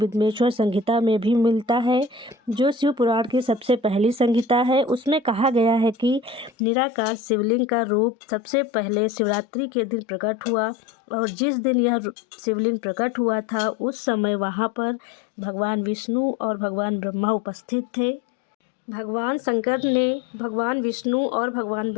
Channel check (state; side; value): drops out; right; at 6.5 s